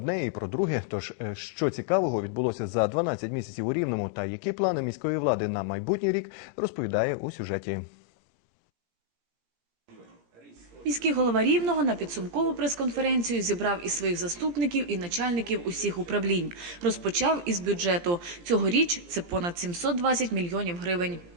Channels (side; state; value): left; late; 17 ms